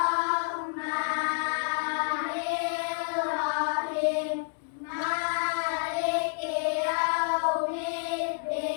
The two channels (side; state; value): right; silent; digital silence